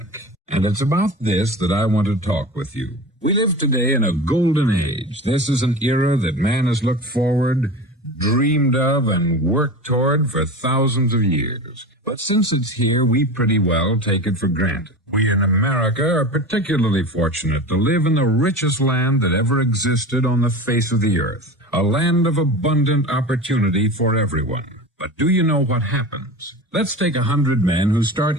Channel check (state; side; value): normal; both; correlation 0.31